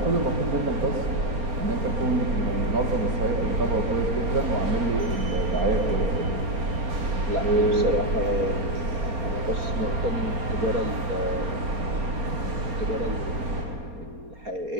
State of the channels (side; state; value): left; late; 4.3 ms